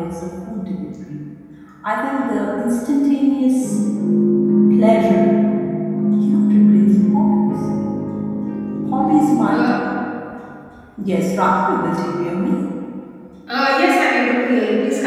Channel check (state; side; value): identical; both; correlation 1.00